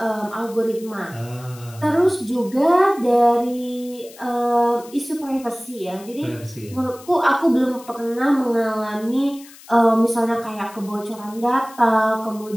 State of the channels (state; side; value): noise; left; hiss, 21 dB below the sound